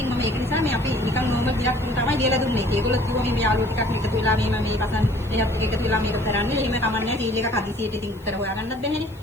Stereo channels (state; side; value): noise; left; hiss, 28 dB below the sound